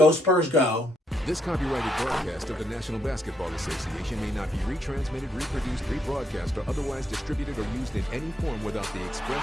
Spurs, go. This copyrighted broadcast of the National Basketball Association may not be retransmitted, reproduced, rebroadcast, or otherwise distributed or used in any form without the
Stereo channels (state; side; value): normal; both; correlation 0.76